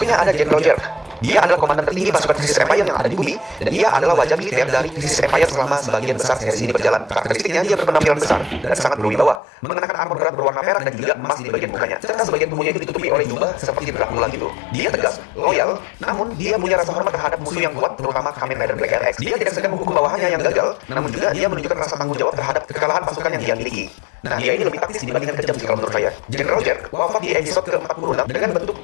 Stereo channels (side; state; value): right; drops out; at 9.4 s